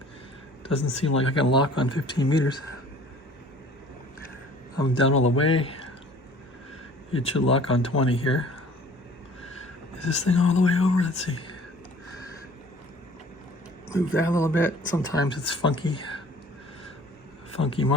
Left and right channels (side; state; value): both; normal; correlation 0.50